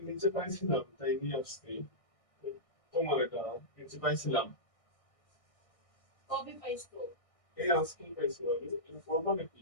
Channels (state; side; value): late; right; 1.6 ms